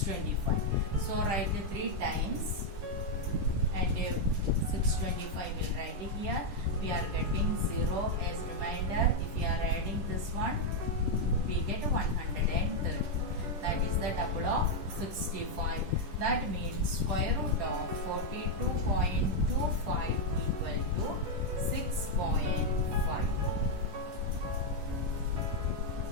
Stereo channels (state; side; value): late; left; 10 ms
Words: So write 3 times. And 625 will write it here. We are getting 0 as reminder. If we are adding this one, we get 130. That is the double of 65. That means square root of 42.25 equal to 6.5.